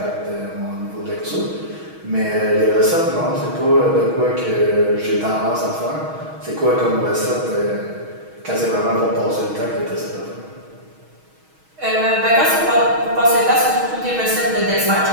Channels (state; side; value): late; left; 6.3 ms